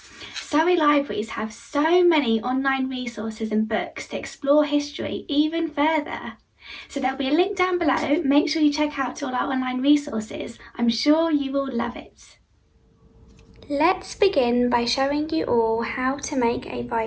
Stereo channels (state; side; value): identical; both; correlation 1.00